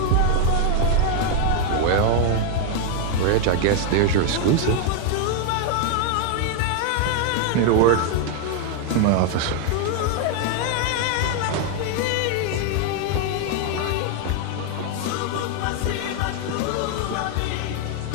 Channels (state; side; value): different; both; correlation 0.00